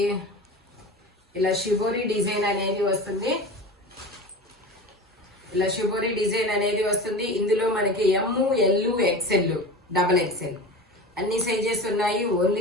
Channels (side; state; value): both; normal; correlation 0.32